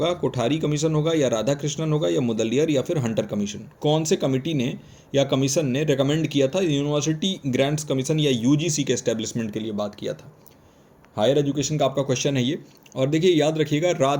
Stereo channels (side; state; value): both; identical; correlation 1.00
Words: कोठारी कमीशन होगा या राधा कृष्णन होगा या मुदलियर या फिर हंटर कमीशन। कौन से कमिटी ने या कमीशन ने रिकमेंड किया था यूनिवर्सिटी ग्रांट्स कमीशन या यूजीसी के एस्टेब्लिशमेंट के लिए बात किया था। हायर एजुकेशन का आपका क्वेश्चन है ये। और देखिए याद रखिएगा,